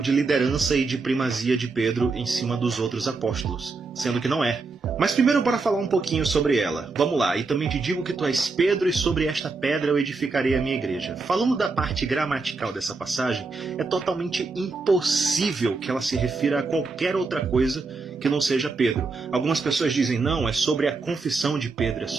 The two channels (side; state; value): left; quieter; 4.0 dB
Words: liderança e de primazia de Pedro em cima dos outros apóstolos, sendo que não é. Mas primeiro bora falar um pouquinho sobre ela. Vamos lá, e também te digo que tu és Pedro, e sobre esta pedra eu edificarei a minha igreja. Falando da parte gramatical dessa passagem, é totalmente impossível que ela se refira a qualquer outra coisa que não seja Pedro. Algumas pessoas dizem, não, é sobre a confissão de Pedro, é